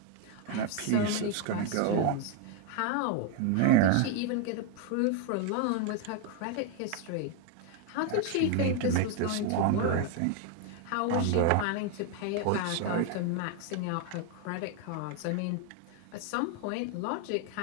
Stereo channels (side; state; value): both; different; correlation 0.01